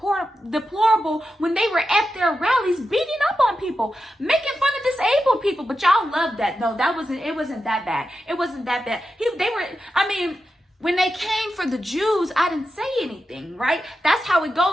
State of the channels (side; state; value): both; normal; correlation 0.89